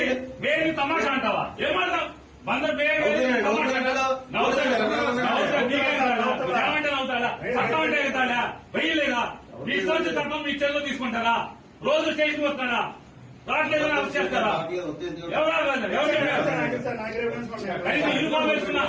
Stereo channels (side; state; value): both; identical; correlation 1.00